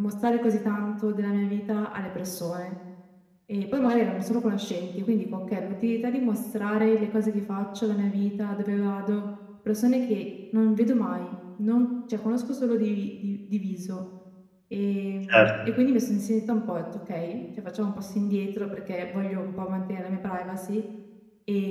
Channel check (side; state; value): both; identical; correlation 1.00